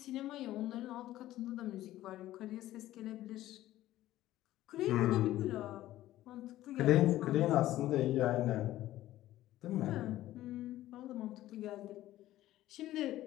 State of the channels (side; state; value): right; quieter; 14.7 dB